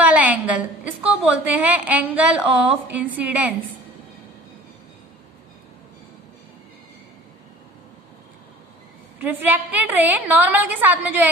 एंगल, इसको बोलते हैं एंगल ऑफ इंसिडेंस। रिफ्रैक्टेड रे नॉर्मल के साथ में जो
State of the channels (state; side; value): normal; both; correlation 0.47